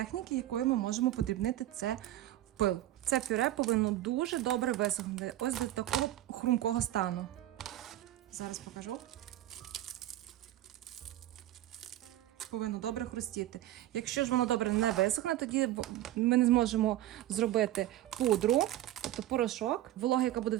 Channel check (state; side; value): quieter; left; 14.2 dB